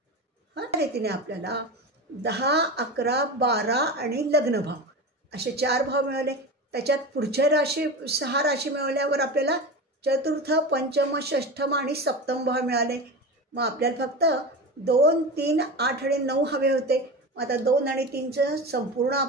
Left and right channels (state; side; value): normal; both; correlation 0.26